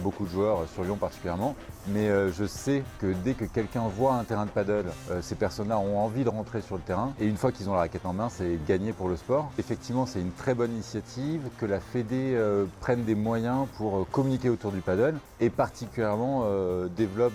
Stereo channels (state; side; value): identical; both; correlation 1.00